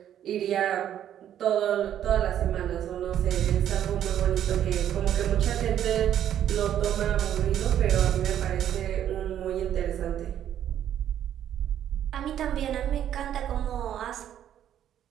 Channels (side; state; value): left; quieter; 10.5 dB